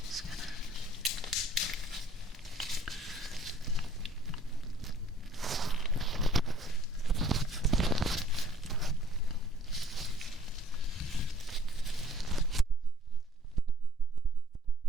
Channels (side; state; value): both; normal; correlation 0.57